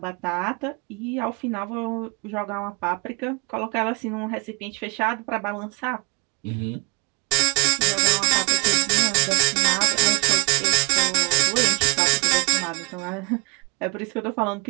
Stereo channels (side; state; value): left; quieter; 32.0 dB